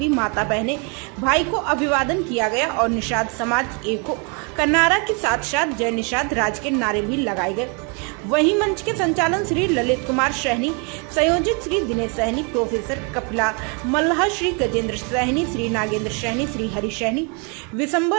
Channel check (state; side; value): quieter; left; 34.8 dB